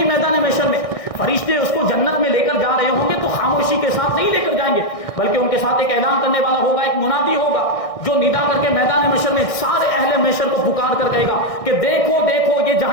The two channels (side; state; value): right; late; 1.6 ms